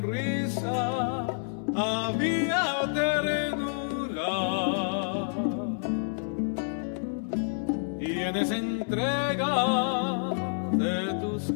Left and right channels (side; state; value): right; silent; digital silence